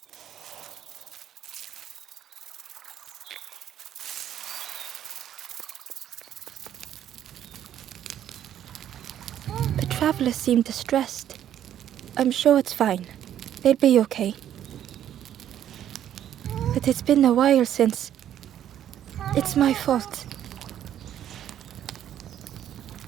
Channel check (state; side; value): quieter; left; 10.7 dB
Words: traveler seemed distressed. I'm sure it's fine. They'll be okay. But it's been a while since. It's my fault.